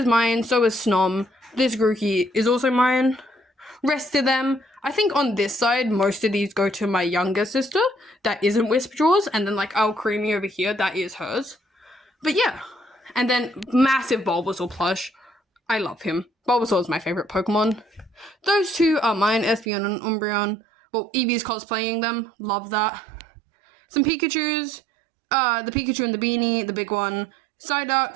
mine, so is Snom. This Grookey is also mine. Rest of them, I think on this side, most of these go to my younger sister. That isn't Whisperjaws, and then, like, Creamy over here, that is hers. But yeah. And then massive Bulbasaur plush. I love him. Bulbasaur is my favorite Pokemon. Those two are mine, Espeon and Umbreon. Well, Eevee's cosplaying them. Love that. Some Pikachus. The Pikachu and the beanie, the big one.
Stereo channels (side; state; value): left; drops out; at 19.7 s